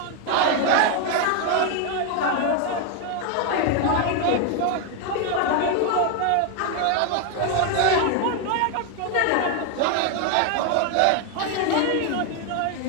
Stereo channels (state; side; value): different; both; correlation 0.01